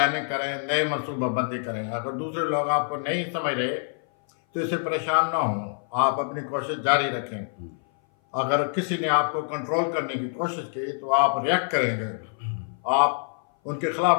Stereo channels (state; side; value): silent; right; 57 dB below the other